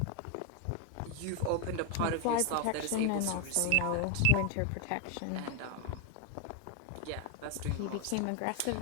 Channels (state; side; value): different; both; correlation 0.01